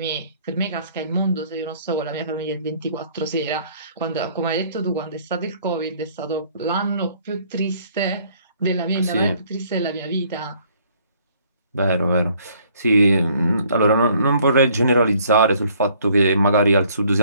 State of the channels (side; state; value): both; inverted; correlation -0.61